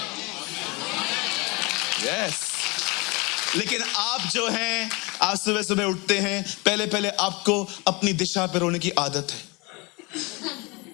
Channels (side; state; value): right; quieter; 26.7 dB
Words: यस। लेकिन आप जो हैं, आप सुबह सुबह उठते हैं, पहले आपको अपनी दिशा पे रोने की आदत है।